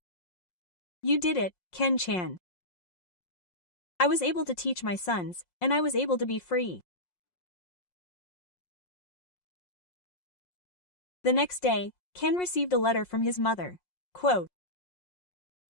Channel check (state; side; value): late; right; 5.6 ms